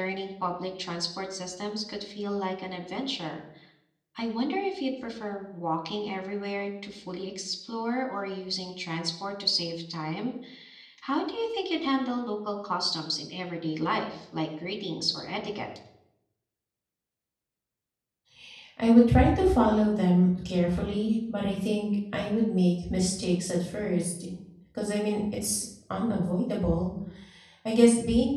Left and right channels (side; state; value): both; identical; correlation 1.00